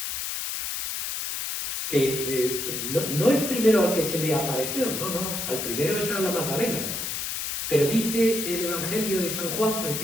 Que no el primero al que se le apareció, no, al primero es a la Magdalena. Pero dice el Evangelio de San Juan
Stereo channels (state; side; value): noise; left; hiss, 3 dB below the sound